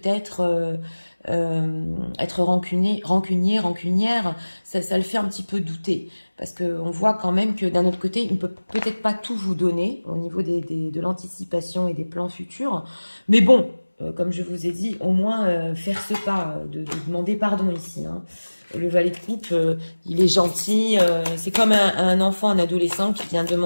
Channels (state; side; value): inverted; both; correlation -1.00